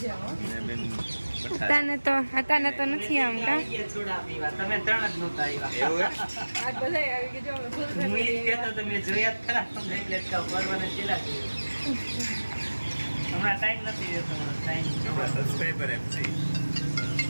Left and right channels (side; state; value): both; inverted; correlation -1.00